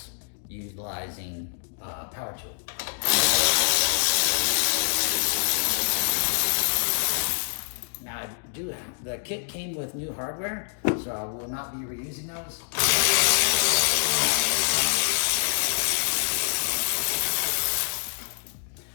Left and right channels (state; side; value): silent; right; 60 dB below the other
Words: utilizing power tool. Now the kit came with new hardware, so I will not be reusing those.